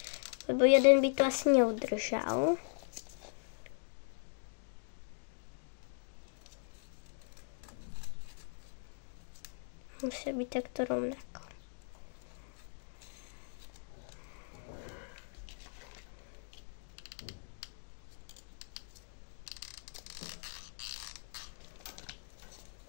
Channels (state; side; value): silent; right; digital silence